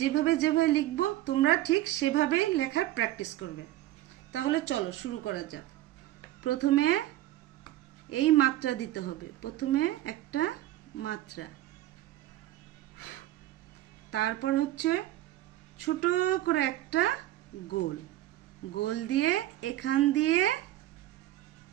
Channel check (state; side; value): quieter; left; 14.9 dB